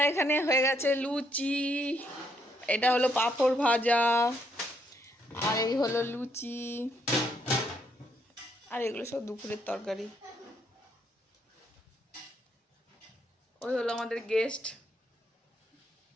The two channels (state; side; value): normal; both; correlation 0.73